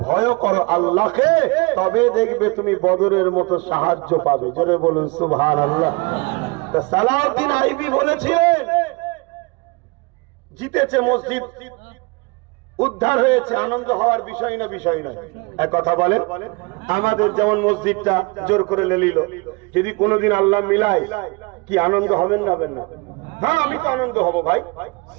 ভয় করো আল্লাহকে, তবে দেখবে তুমি বদরের মতো সাহায্য পাবে। জোরে বলুন সুবহানাল্লাহ। সালাউদ্দিন আইবি বলেছিলেন জিতেছে মসজিদ, উদ্ধার হয়েছে, আনন্দ হওয়ার বিষয় না, বিষয় নয়। এক কথা বলেন, আমাদের যেমন মসজিদটা জোর করে নিল, যদি কোনোদিন আল্লাহ মিলায়, কি আনন্দ হবেন না হবেন না? হ্যাঁ, আমি তো আনন্দ হব ভাই,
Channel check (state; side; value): quieter; left; 27.7 dB